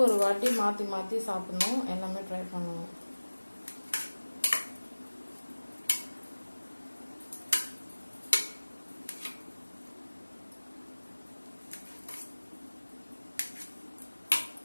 வாட்டி மாற்றி மாற்றி சாப்பிடணும், எல்லாமே ட்ரை பண்ணணும்.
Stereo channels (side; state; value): both; inverted; correlation -1.00